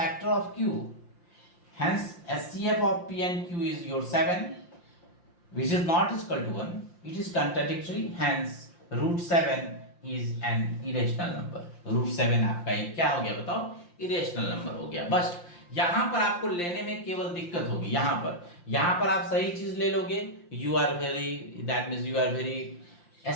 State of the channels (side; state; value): right; late; 5.7 ms